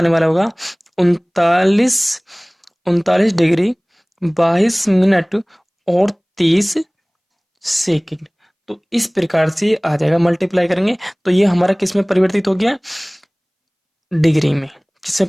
वाला होगा? 39 डिग्री 22 मिनट और 30 सेकंड। तो इस प्रकार से ये आ जाएगा, मल्टीप्लाई करेंगे तो ये हमारा किस में परिवर्तित हो गया? डिग्री में।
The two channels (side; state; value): both; identical; correlation 1.00